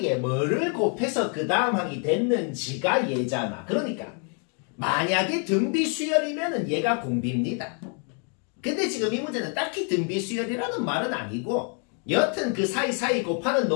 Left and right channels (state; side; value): quieter; right; 39.7 dB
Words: 뭐를 곱해서 그 다음 항이 됐는지가 얘잖아. 그러니까 만약에 등비수열이면은 얘가 공비입니다. 근데 지금 이 문제는 딱히 등비수열이라는 말은 아니고 여튼 그 사이사이 곱하는